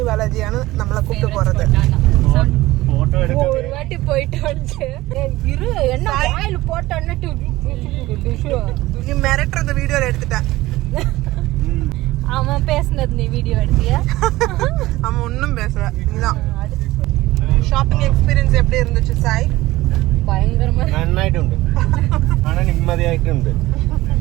ബാലാജിയാണ് നമ്മളെ കൂട്ടി പോறது. ஒரு வாட்டி போயிட்டு வந்து இரு என்ன வாயில போட்டன்னட்டு நீ மிரட்டுறத வீடியோல எடுத்துட்ட. அவன் பேசுனது நீ வீடியோ எடுத்தியா? அவன் ஒன்றும் பேசல. நீதான். ഷോപ്പിംഗ് എക്സ്പീരിയൻസ് எப்படி இருந்துச்சு സായ്? ഭയങ്കരமா നന്നായിട്ടുണ്ട്. ആണ് നിമ്മതിയായിട്ടുണ്ട്.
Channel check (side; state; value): left; quieter; 18.0 dB